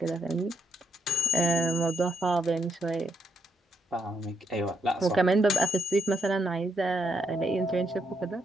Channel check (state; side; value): normal; both; correlation 0.77